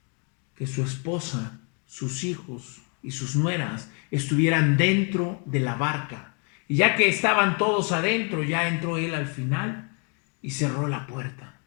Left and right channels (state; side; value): quieter; right; 38.1 dB